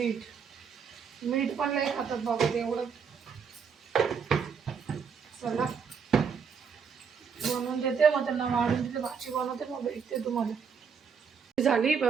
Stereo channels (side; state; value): left; quieter; 6.3 dB